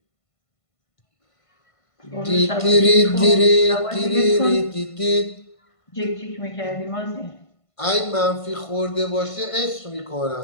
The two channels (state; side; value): late; right; 1.5 ms